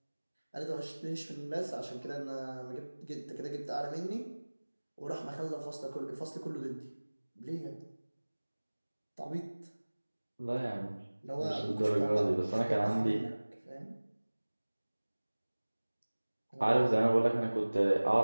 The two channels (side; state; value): both; inverted; correlation -1.00